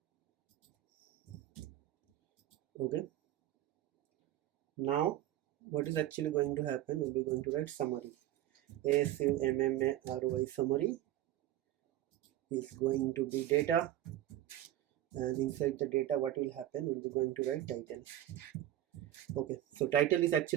Okay, now what is actually going to happen, we'll be going to write summary. SUMMARY, summary is going to be data, and inside the data what will happen, we'll be going to write title. Okay, so title is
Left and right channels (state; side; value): quieter; left; 13.3 dB